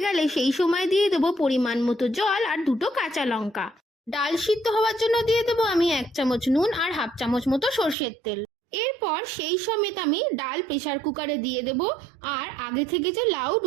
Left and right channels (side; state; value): left; drops out; at 8.0 s